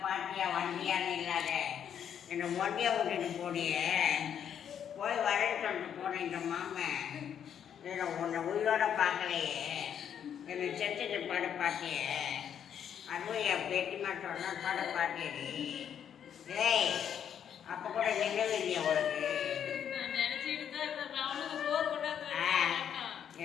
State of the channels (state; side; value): quieter; right; 8.8 dB